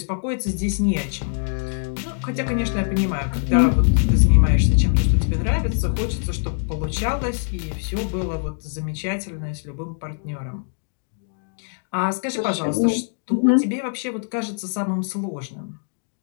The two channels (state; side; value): silent; right; digital silence